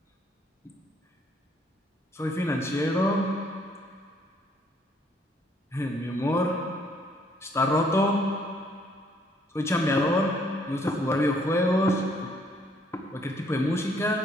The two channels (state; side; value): normal; both; correlation 0.66